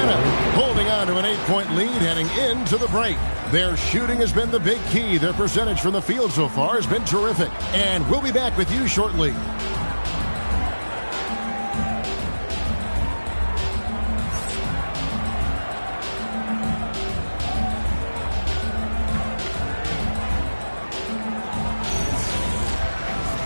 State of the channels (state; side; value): inverted; both; correlation -1.00